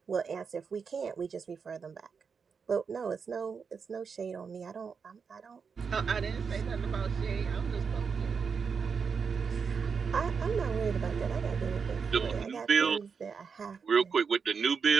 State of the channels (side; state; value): left; quieter; 5.8 dB